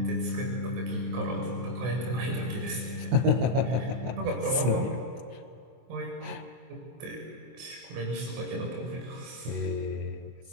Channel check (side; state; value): left; late; 24 ms